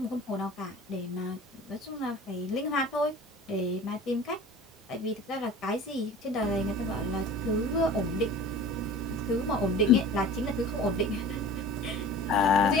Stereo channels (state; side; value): normal; both; correlation 0.40